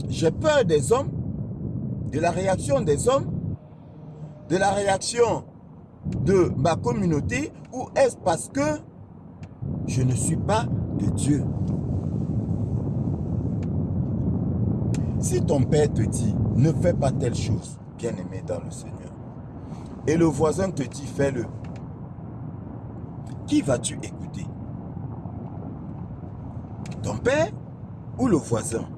j'ai peur des hommes, de la réaction des hommes, de la réaction de ma communauté, ou est-ce parce que je ne suis pas de Dieu? Si ton père te dit, ne fais pas telle chose, bien-aimé dans le Seigneur, et le voisin te dit, fais-le, qui vas-tu écouter? Ton père ou le voisin?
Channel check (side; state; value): both; identical; correlation 1.00